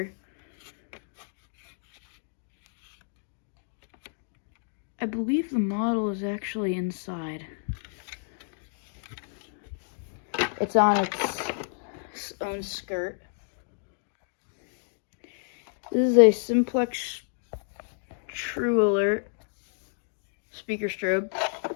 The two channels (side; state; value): right; silent; digital silence